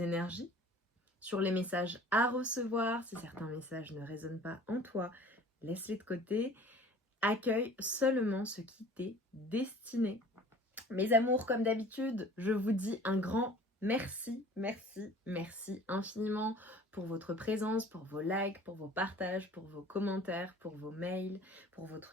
énergies, sur les messages à recevoir. Si certains messages ne résonnent pas en toi, laisse-les de côté. Accueille seulement ce qui t'est destiné. Mes amours, comme d'habitude, je vous dis un grand merci, merci, merci infiniment pour votre présence, pour vos likes, pour vos partages, pour vos commentaires, pour vos mails, pour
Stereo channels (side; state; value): both; normal; correlation 0.47